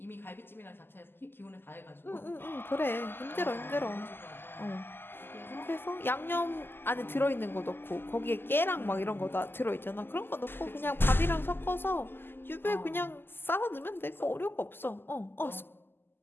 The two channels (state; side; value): late; right; 0.10 ms